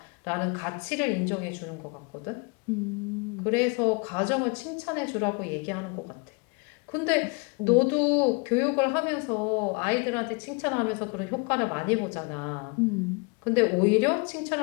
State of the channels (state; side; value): quieter; right; 31.8 dB